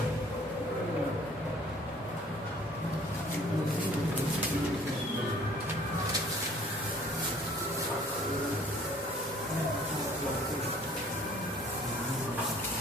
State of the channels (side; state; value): both; normal; correlation 0.54